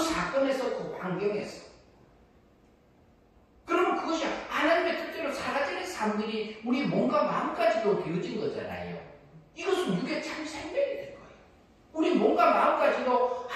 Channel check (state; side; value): identical; both; correlation 1.00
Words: 사건에서 그 환경에서. 그러면 그것이 하나님의 뜻대로 사라지는 삶들이 우리 몸과 마음까지도 되어진 거잖아요. 이것은 육의 참 생명이 될 거예요. 우리 몸과 마음까지도